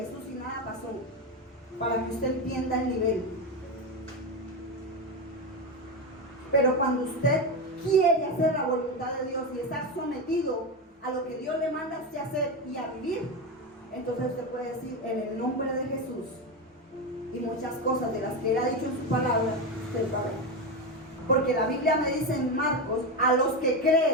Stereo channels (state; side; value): normal; both; correlation 0.14